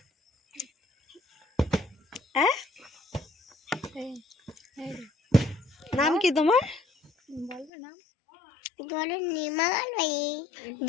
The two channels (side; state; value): right; drops out; at 7.7 s